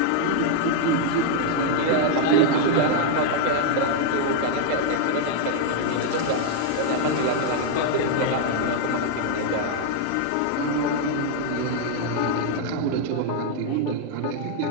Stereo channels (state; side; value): different; both; correlation -0.01